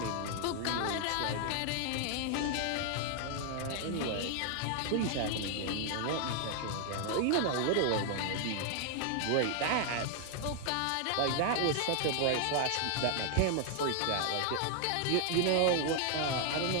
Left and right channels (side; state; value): both; different; correlation 0.00